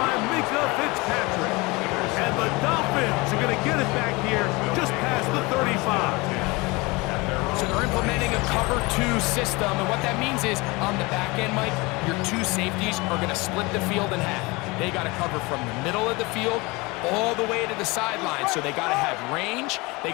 Mika Fitzpatrick. And the Dolphins are going to get it back here just past the 35. So they're implementing a cover 2 system, and what that means is on the back end, Mike, your two safeties are going to split the field in half. They got to cover from the middle of the field all the way to the sideline, so they got to have range, they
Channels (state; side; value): quieter; right; 24.6 dB